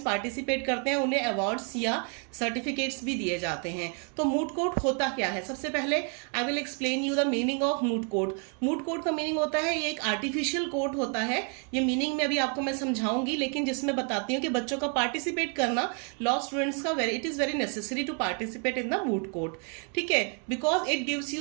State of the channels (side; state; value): left; quieter; 39.3 dB